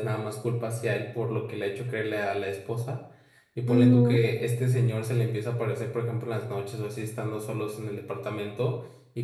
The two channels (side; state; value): both; identical; correlation 1.00